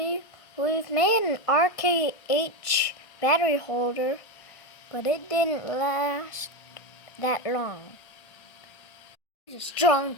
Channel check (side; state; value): right; late; 1.5 ms